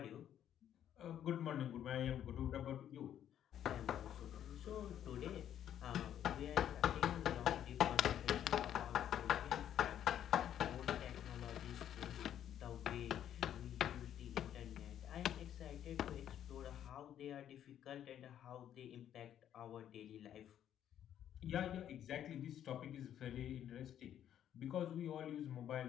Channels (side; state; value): right; quieter; 10.4 dB